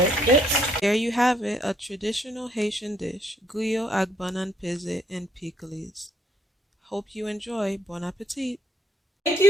gets. There you have it, a traditional Haitian dish, griot avec banane pesée and pickles. Hope you enjoy. Bon appetit. Thank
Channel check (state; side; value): normal; both; correlation 0.70